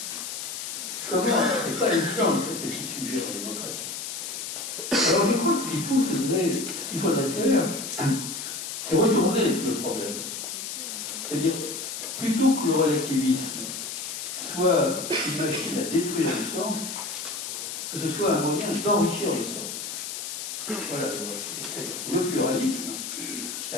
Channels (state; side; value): noise; left; hiss, 6 dB below the sound